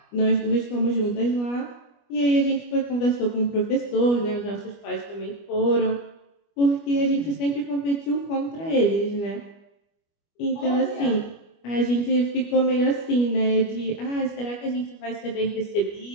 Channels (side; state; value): right; late; 25 ms